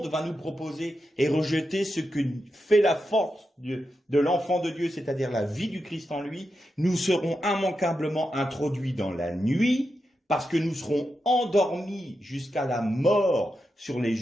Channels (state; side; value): normal; both; correlation 0.88